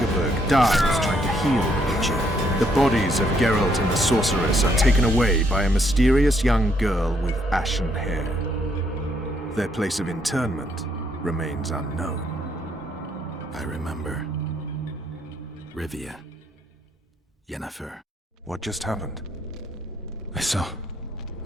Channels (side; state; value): both; normal; correlation 0.72